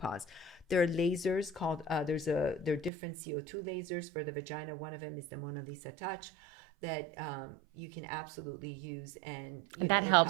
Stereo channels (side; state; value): left; drops out; at 2.9 s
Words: There are lasers called there are different CO2 lasers for the vagina. One of them is the Mona Lisa Touch that you can absolutely use, and that